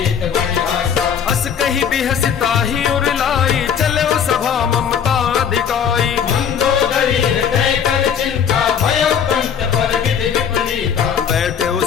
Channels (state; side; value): quieter; right; 7.8 dB